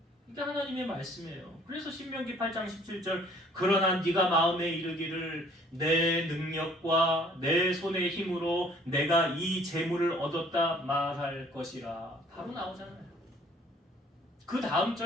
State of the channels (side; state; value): both; normal; correlation 0.57